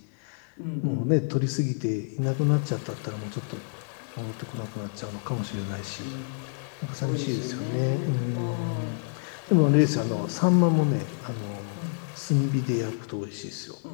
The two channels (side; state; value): right; silent; digital silence